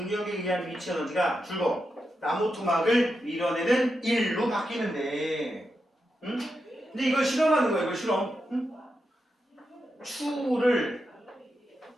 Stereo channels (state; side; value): normal; both; correlation 0.87